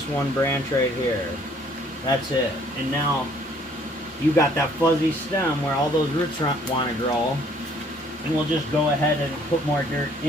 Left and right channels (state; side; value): normal; both; correlation 0.60